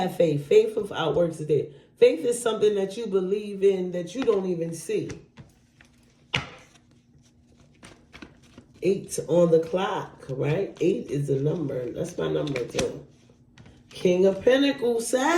faith. Faith without works is dead. Faith is something that you believe in that you don't even see. 8 on the clock, right? 8 is a number. That's my number too. King of Pentacles,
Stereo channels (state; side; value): identical; both; correlation 1.00